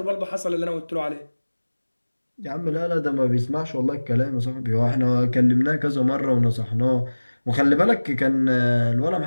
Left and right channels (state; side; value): inverted; both; correlation -1.00